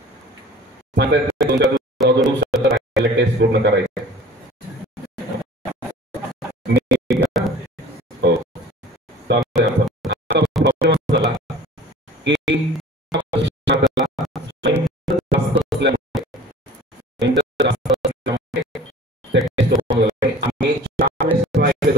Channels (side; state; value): both; normal; correlation 0.45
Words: टेस्ट पूर्ण करायचे. हो, प्रॉब्लेम झाला की आम्ही 4 वेळेस ट्राय